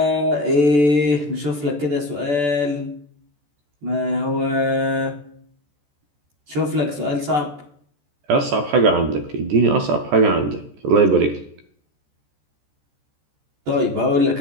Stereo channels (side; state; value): left; late; 14 ms